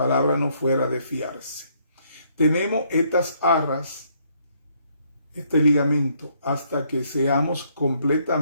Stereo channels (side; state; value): both; inverted; correlation -0.69